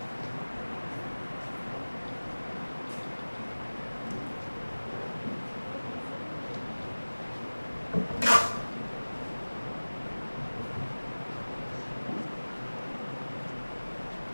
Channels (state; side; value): inverted; both; correlation -1.00